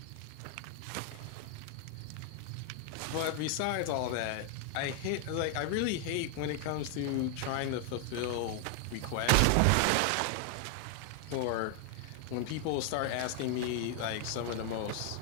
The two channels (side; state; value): both; different; correlation 0.00